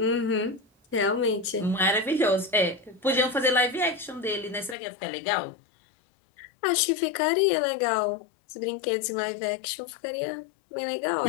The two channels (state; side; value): drops out; right; at 4.8 s